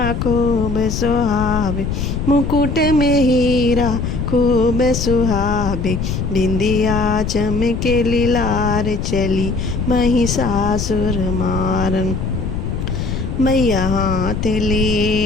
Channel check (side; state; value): left; noise; rumble, 3 dB below the sound